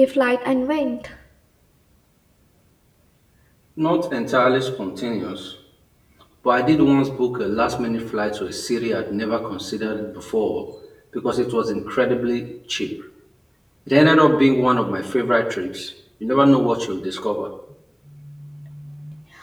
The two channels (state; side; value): identical; both; correlation 1.00